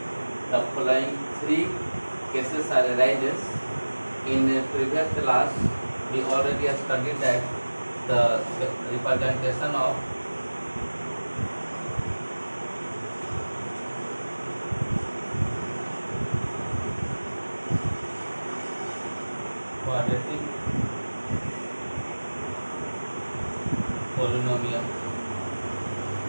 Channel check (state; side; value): inverted; both; correlation -1.00